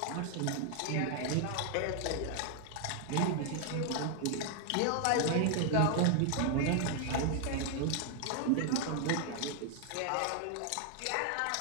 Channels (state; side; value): different; both; correlation 0.00